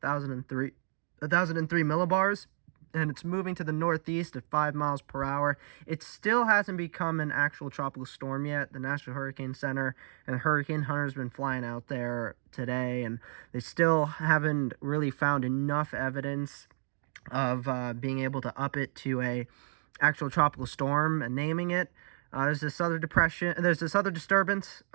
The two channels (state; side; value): silent; left; 57 dB below the other